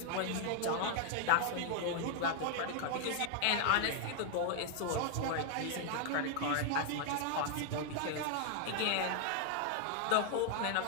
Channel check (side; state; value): both; different; correlation 0.00